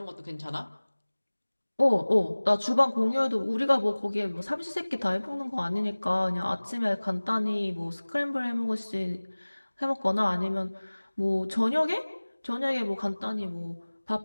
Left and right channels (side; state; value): both; inverted; correlation -1.00